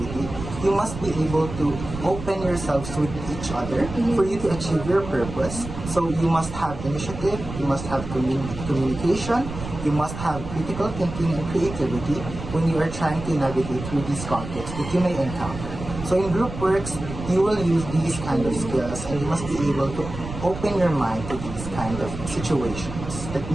you must be able to open yourselves with each other for you to achieve your purpose. So you must have initiative, you must have communication, you must have critical thinking and creativity when you are trying to navigate through these conflicts that you may encounter. So in group works, you will use these kind of skills and you must be able to open your mind to these kind of situations that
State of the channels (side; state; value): right; noise; rumble, 9 dB below the sound